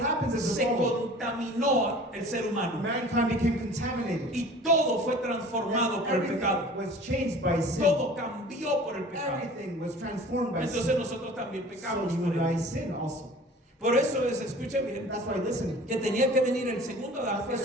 is se the fall. contaminó el ser humano Mankind became contaminated. y todo fue transformado por el Everything pecado. was changed by sin. Todo cambió por el pecado. Everything was transformed by Entonces sin. nosotros también So pecamos you por and I él. sin also. Por eso es, escuche bien, That's why, listen, que tenía que venir el segundo Adán that's why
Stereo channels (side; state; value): both; normal; correlation 0.44